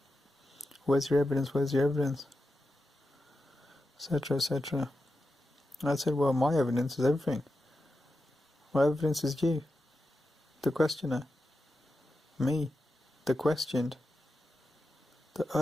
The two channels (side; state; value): both; normal; correlation 0.90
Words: where's your evidence, etc, etc. And I said, well, my evidence is everything. My evidence is you, the questioner, me, the questioned, the